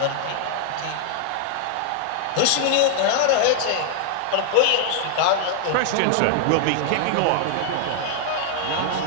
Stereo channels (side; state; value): both; different; correlation 0.00